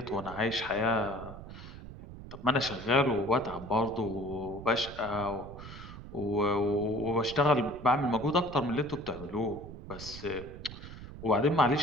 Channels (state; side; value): noise; right; rumble, 13 dB below the sound